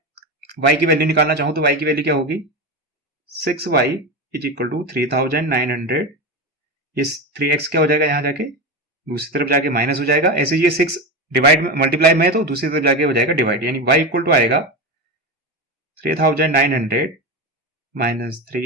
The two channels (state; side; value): normal; both; correlation 0.19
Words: y की वैल्यू निकालना चाहूं तो y की वैल्यू क्या होगी, 6y इज इक्वल टू 3,900। ये 3x क्या हो जाएगा, यहां जाके दूसरी तरफ जाके माइनस हो जाएगा। ऐसे ये 6 डिवाइड में, मल्टीप्लाई में है तो दूसरी तरफ जाके हो जाएगा डिवाइड, यानी y इक्वल टू आएगा 3,900 माइनस